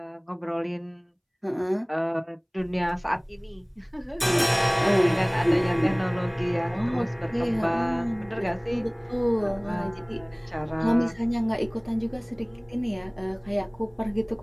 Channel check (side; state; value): both; identical; correlation 1.00